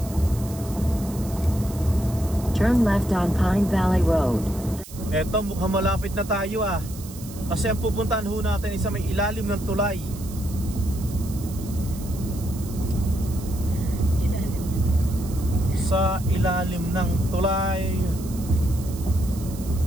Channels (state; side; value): noise; right; hiss, 16 dB below the sound